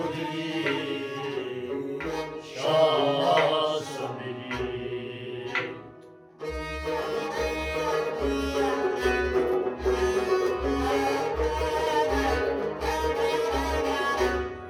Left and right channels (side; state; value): both; identical; correlation 1.00